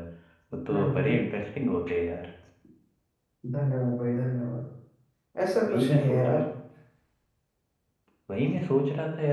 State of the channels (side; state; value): both; identical; correlation 1.00